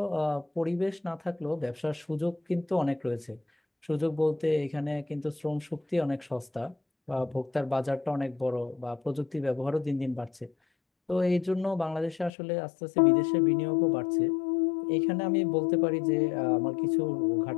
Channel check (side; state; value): right; drops out; at 12.3 s